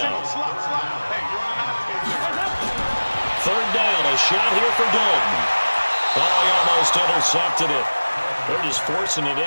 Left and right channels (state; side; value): inverted; both; correlation -1.00